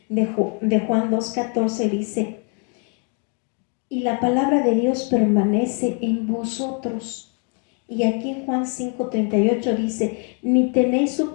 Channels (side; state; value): right; quieter; 39.3 dB